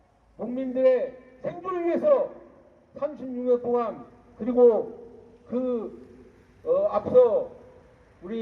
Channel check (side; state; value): both; identical; correlation 1.00